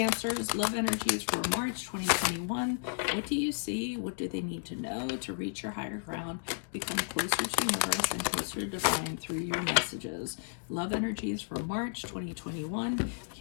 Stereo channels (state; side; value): silent; right; 56 dB below the other